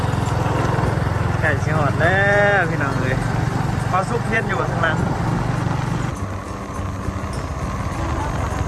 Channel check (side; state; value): both; identical; correlation 1.00